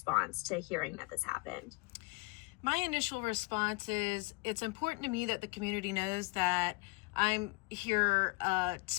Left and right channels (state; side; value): quieter; right; 26.2 dB